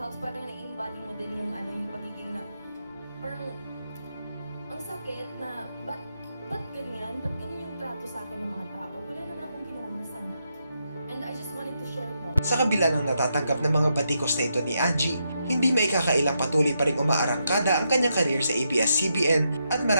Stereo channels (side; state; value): both; inverted; correlation -0.82